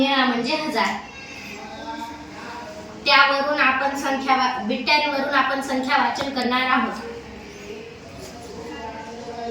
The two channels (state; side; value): identical; both; correlation 1.00